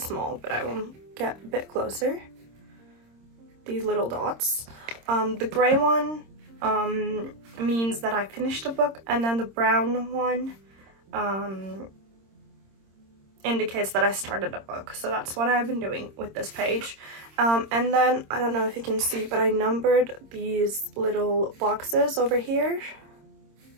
but I will get a bit closer. These little dots. The gray one means that I finished a book, and then the brown one indicates that I started a book. So that's what I've been doing with this page. And then, I don't know if you can see, but I numbered these little boxes over here.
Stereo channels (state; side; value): late; left; 26 ms